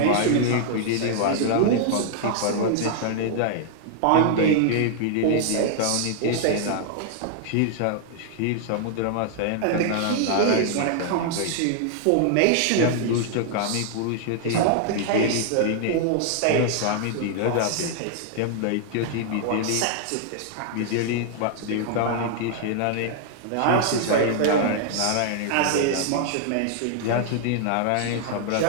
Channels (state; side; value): different; both; correlation 0.00